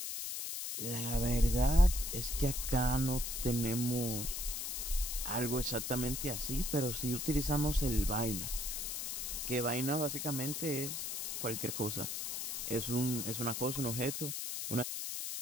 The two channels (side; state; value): left; noise; hiss, 4 dB below the sound